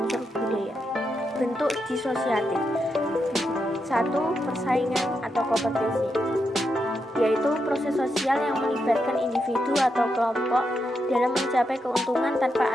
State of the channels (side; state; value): both; normal; correlation 0.84